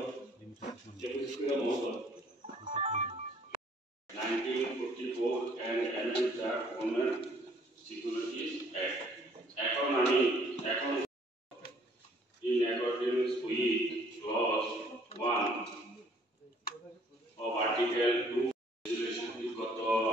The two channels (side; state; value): both; normal; correlation 0.60